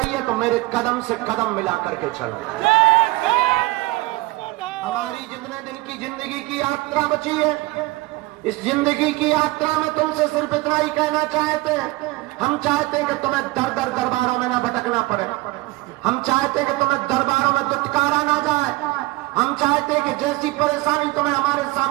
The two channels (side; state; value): left; quieter; 20.8 dB